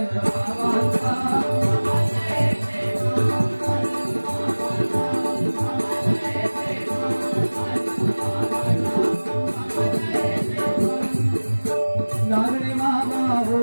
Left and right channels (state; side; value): inverted; both; correlation -1.00